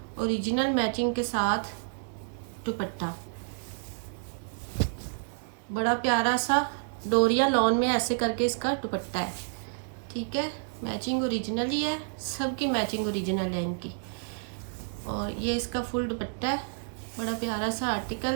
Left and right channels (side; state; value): left; silent; digital silence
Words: ओरिजिनल मैचिंग के साथ दुपट्टा, बड़ा प्यारा सा डोरिया लॉन में ऐसे करके इसका दुपट्टा है। ठीक है, मैचिंग ओरिजिनल ही है, सबकी मैचिंग ओरिजिनल है इनकी। और ये इसका फुल दुपट्टा है, बड़ा प्यारा सा